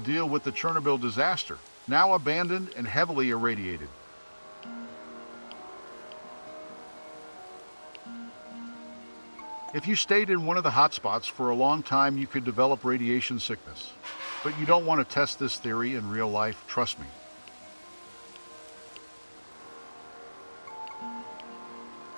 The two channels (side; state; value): both; inverted; correlation -1.00